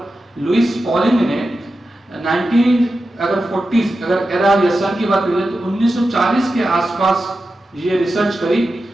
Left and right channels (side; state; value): both; normal; correlation 0.91